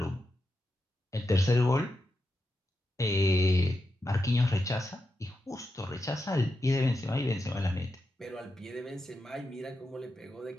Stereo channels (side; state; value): both; normal; correlation 0.87